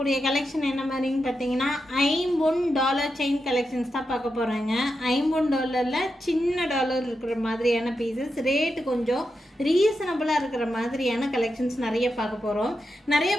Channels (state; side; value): normal; both; correlation 0.87